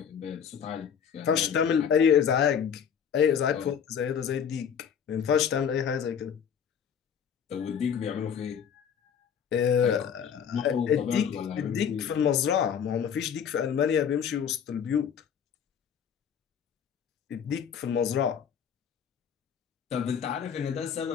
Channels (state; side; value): quieter; right; 7.8 dB